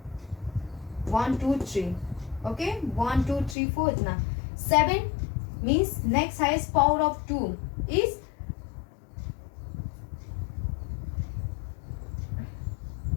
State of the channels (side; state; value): right; drops out; at 3.6 s